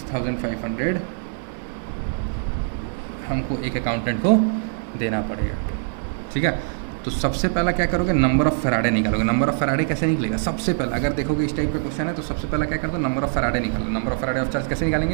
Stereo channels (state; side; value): silent; left; 56 dB below the other